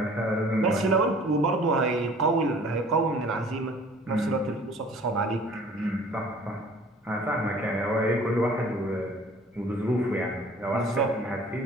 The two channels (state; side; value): normal; both; correlation 0.51